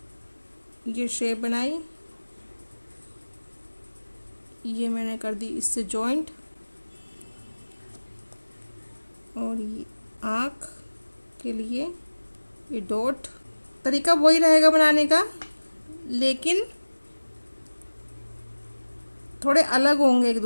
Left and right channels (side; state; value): both; inverted; correlation -1.00